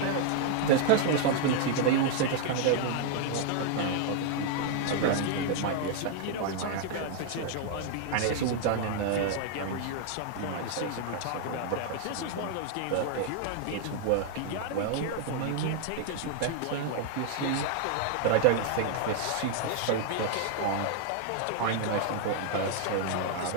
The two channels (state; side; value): different; both; correlation 0.00